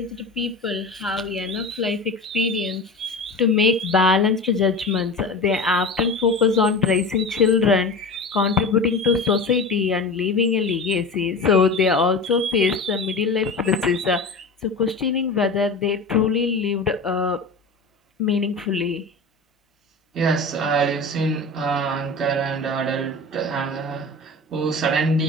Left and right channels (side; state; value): right; quieter; 3.1 dB